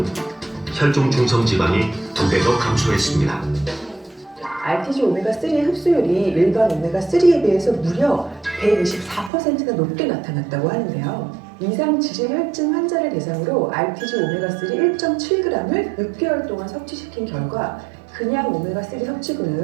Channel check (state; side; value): drops out; left; at 9.3 s